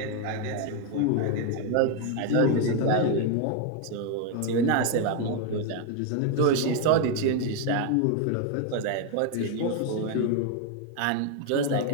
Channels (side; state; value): both; different; correlation 0.01